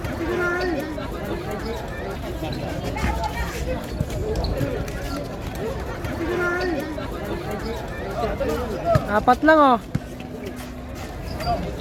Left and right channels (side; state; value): both; identical; correlation 1.00